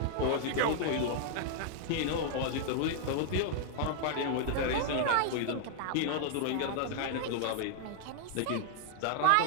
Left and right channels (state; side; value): different; both; correlation -0.01